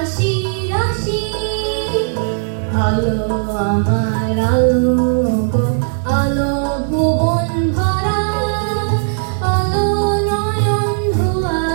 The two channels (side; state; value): left; silent; digital silence